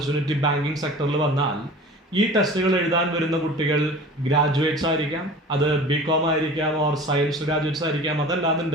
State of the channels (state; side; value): normal; both; correlation 0.40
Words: ബാങ്കിങ് സെക്ടറിൽ വന്നാൽ ഈ ടെസ്റ്റുകൾ എഴുതാൻ വരുന്ന കുട്ടികൾ ഗ്രാജുവേറ്റ്സ് ആയിരിക്കാം, അത് ബികോം ആയിരിക്കാം, ഓർ സയൻസ് ഗ്രാജുവേറ്റ്സ് ആയിരിക്കാം,